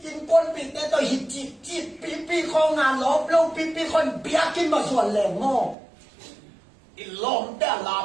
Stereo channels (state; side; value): drops out; left; at 5.8 s